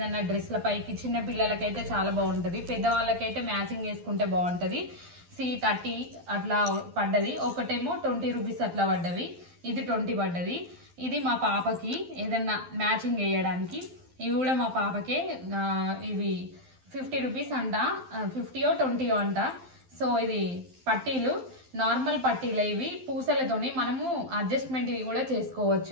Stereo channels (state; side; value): late; left; 12 ms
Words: డ్రెస్ల పైకి చిన్న పిల్లలకైతే చాలా బాగుంటుంది, పెద్దవాళ్ళకైతే మ్యాచింగ్ వేసుకుంటే బాగుంటుంది. 30 అట్లా పడ్డది. ఒకటేమో 20 రూపీస్ అట్లా పడ్డవి. ఇది 20 పడ్డది. ఇది మా పాపకి ఏదన్నా మ్యాచింగ్ వేయడానికి. ఇవి కూడా మా పాపకే. ఇవి 50 రూపీస్ అంట, 50 20 అంట. సో ఇది పట్టీలు, నార్మల్ పట్టీలు. ఇవి పూసలతోని మనము అడ్జస్ట్మెంట్ ఇవి కూడా